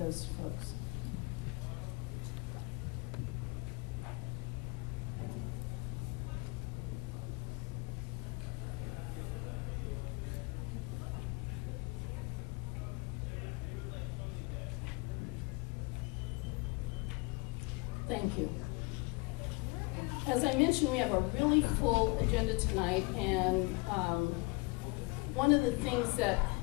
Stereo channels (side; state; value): right; quieter; 27.0 dB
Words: folks. Thank you. As I mentioned, we have a really full agenda tonight, and one of the things that